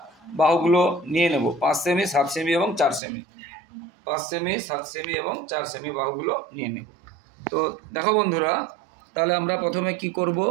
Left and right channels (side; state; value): left; drops out; at 3.0 s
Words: বাহুগুলো নিয়ে নেব। 5 সেমি, 7 সেমি এবং 4 সেমি, 5 সেমি, 7 সেমি এবং 4 সেমি বাহুগুলো নিয়ে নেব। তো দেখো বন্ধুরা, তাহলে আমরা প্রথমে কি করব,